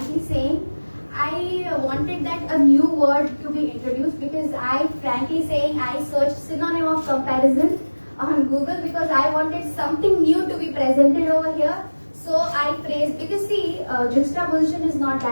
saying, I wanted that a new word to be introduced because I searched synonym of comparison on Google because I wanted something new to be presented over here. So I phrased, because see, juxtaposition is not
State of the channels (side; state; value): both; inverted; correlation -1.00